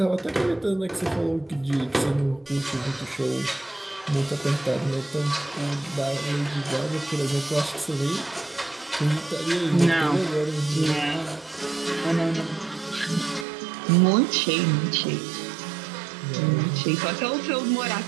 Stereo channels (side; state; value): left; drops out; at 13.5 s